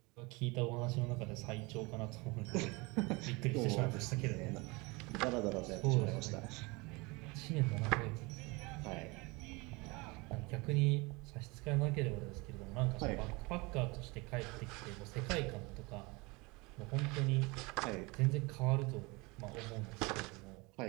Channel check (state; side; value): quieter; left; 25.9 dB